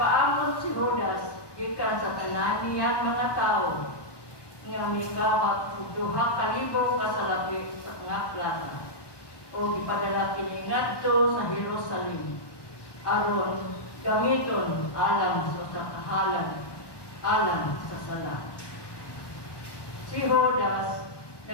si Judas, ikan sa tanan niya mga tao, nga mingawat og 2,000 kasalapi sa nga plata, o ipadala kini ngadto sa Jerusalem, aron gamiton alam sa kahalan, alam sa sala. Si Judas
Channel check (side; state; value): right; late; 1.2 ms